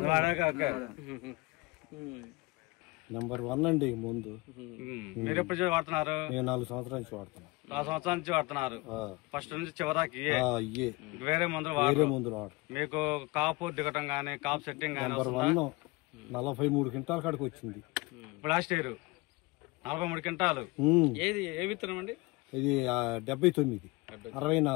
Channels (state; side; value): quieter; right; 23.8 dB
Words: నెంబర్ 1 అండి ముందు. మీరు ఎప్పుడు వాడుతున్నారు? నేను 4 సంవత్సరాల నుంచి వాడుతున్నాను. 4 సంవత్సరాల నుంచి వాడుతున్నారు. ఫస్ట్ నుంచి చివరికి వేరే మందులు వాడు. మీకు కాపు దిగటం గానీ, కాపు సెట్టింగ్ గానీ? నెంబర్ 1 43 క్వింటాల కాడికి వచ్చింది లాస్ట్ ఇయర్. 43 క్వింటాలు. ఏది ఏ విత్తనం అండి? ఇది 79,